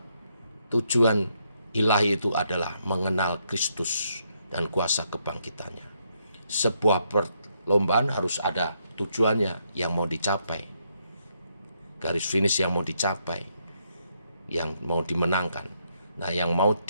tujuan ilahi itu adalah mengenal Kristus dan kuasa kebangkitannya. Sebuah perlombaan harus ada tujuannya yang mau dicapai, garis finish yang mau dicapai, yang mau dimenangkan. Nah, yang mau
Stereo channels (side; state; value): both; inverted; correlation -0.76